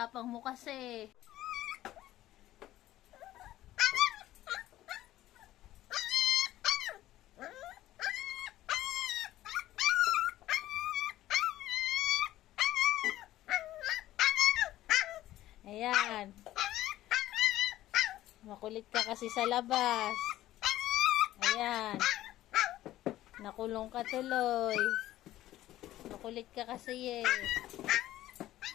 mo kasi. Ayan. Makulit ka kasi sa labas. Ayan. Nakulong ka tuloy. Makulit ka kasi eh.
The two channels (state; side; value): quieter; right; 14.6 dB